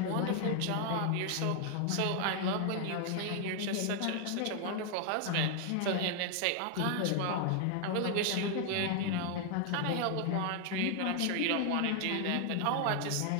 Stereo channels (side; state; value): both; different; correlation 0.00